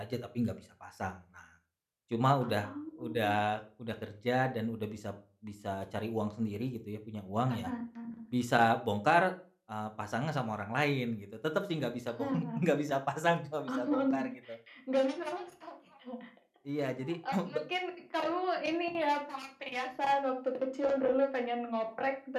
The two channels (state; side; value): identical; both; correlation 1.00